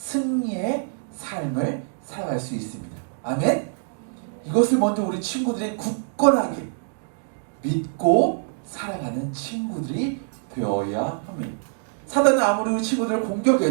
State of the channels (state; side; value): silent; left; digital silence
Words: 삶을 살아갈 수 있습니다. 아멘? 이것을 먼저 우리 친구들이 굳건하게 믿고 살아가는 친구들이 되어야 합니다. 사단은 아무리 우리 친구들을